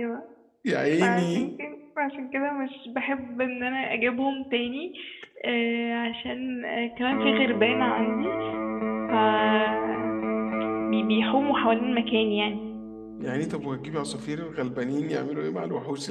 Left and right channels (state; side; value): identical; both; correlation 1.00